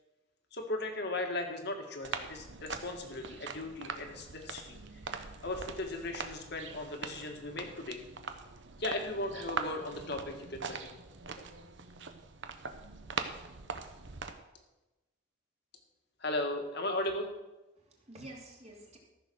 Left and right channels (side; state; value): both; normal; correlation -0.02